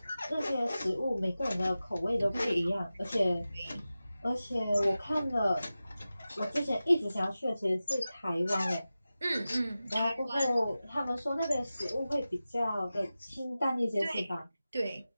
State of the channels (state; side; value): inverted; both; correlation -0.95